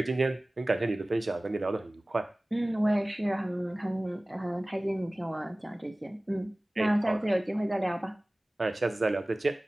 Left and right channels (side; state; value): both; normal; correlation 0.98